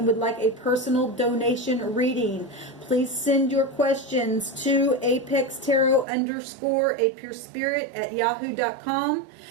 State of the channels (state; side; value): drops out; left; at 6.1 s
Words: would like a personal donation reading, please send your questions to apextarot_apurespirit@yahoo.com,